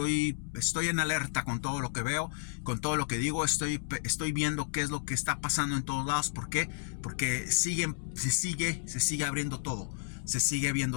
en alerta con todo lo que veo, con todo lo que digo. Estoy viendo qué es lo que está pasando en todos lados. ¿Por qué? Porque se sigue abriendo todo. Se sigue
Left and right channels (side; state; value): right; silent; digital silence